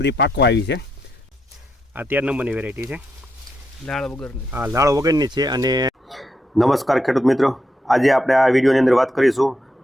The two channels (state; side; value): normal; both; correlation 0.81